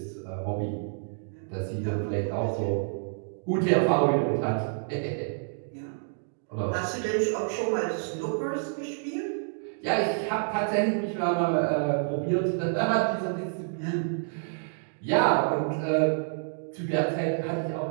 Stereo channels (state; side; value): silent; left; digital silence